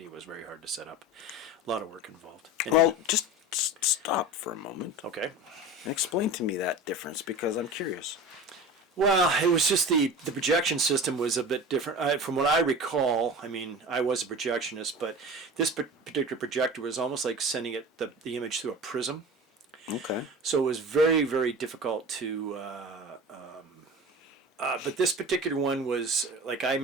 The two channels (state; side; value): normal; both; correlation 0.34